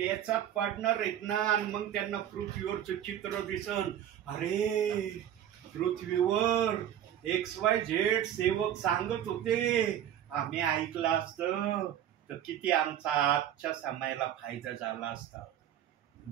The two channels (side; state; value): left; quieter; 10.6 dB